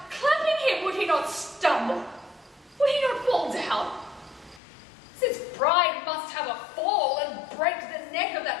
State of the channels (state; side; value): drops out; right; at 4.6 s